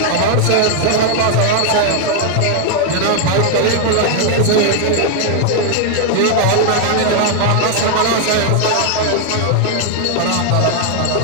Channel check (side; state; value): both; different; correlation 0.00